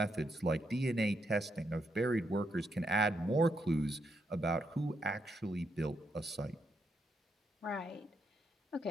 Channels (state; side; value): normal; both; correlation 0.79